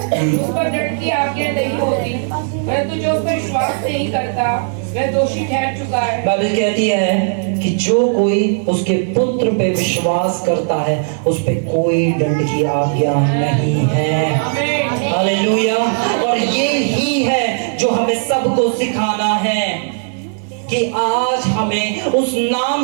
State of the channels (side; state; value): left; silent; 67 dB below the other